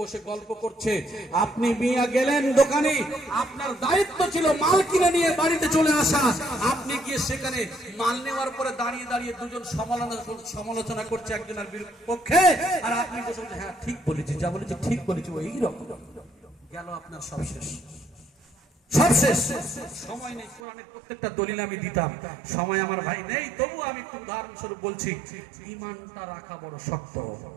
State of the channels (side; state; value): left; drops out; at 20.6 s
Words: গল্প করছে, আপনি মিয়া গেলেন দোকানে, আপনার দায়িত্ব ছিল মাল কিনে নিয়ে বাড়িতে চলে আসা। আপনি গিয়ে সেখানে মাল নেওয়ার পরে দাঁড়িয়ে দাঁড়িয়ে দুজন সমালোচনা করছে একজনের পক্ষে, আর আপনি বসে বলছেন, হ্যাঁ ঠিক বলেছি, যা বলেছি ঠিক বলেছি, এইরকম গেল আপনার সব শেষ, সব শেষ। সময় নেই, কোরআনের প্রত্যেকটা দলিল আমি দিতাম, সময় আমার ভাই নেই, তবু আমি একটু উদাহরণস্বরূপ বলছি। ইমানটা রাখা বড় শক্ত,